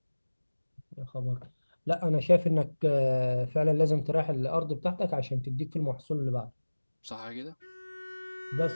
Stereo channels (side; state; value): both; inverted; correlation -1.00